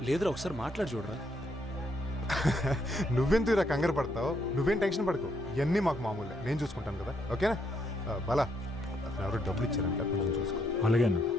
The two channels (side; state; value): both; normal; correlation 0.74